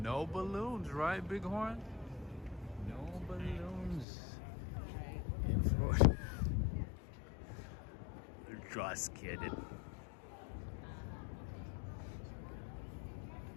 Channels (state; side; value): drops out; right; at 4.0 s